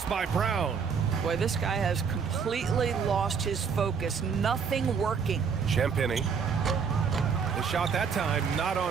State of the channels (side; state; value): left; quieter; 6.3 dB